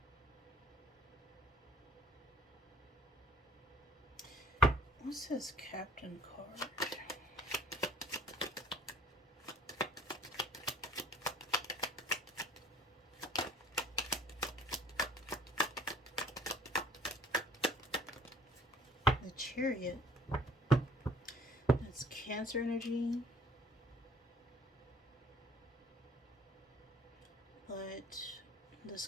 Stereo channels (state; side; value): normal; both; correlation 0.54